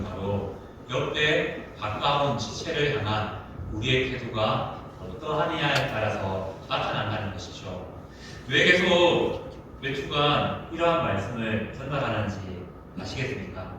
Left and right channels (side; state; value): both; identical; correlation 1.00